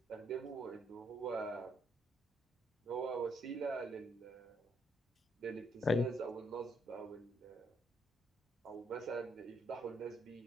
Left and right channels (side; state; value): both; normal; correlation 0.73